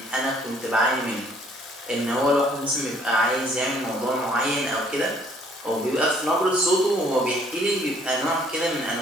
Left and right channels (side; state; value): both; normal; correlation 0.61